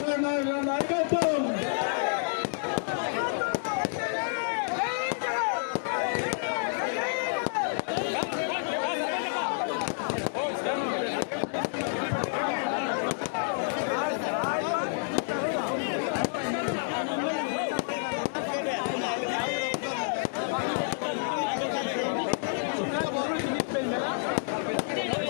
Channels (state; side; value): silent; right; digital silence